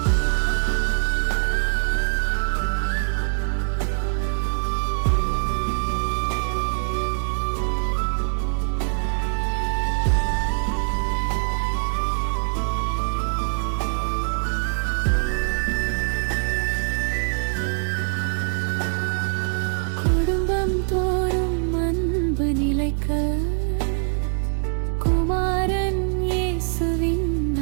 தோறும் அன்பு நிலைக்க குமாரன் இயேசுவின்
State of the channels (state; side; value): silent; left; 56 dB below the other